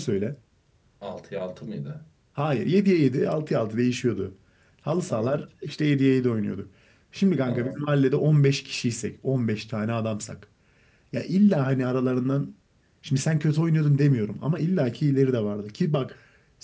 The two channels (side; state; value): both; identical; correlation 1.00